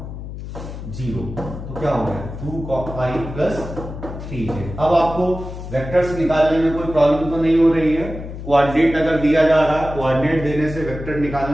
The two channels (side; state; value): left; noise; hum, 10 dB below the sound